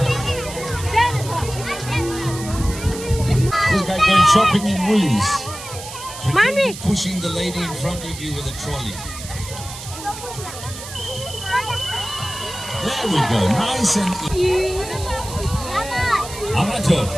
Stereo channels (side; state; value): right; noise; hiss, 12 dB below the sound